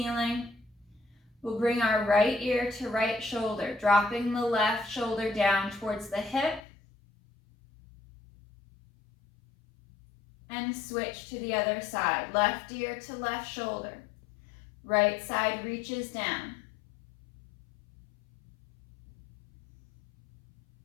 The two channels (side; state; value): right; drops out; at 6.6 s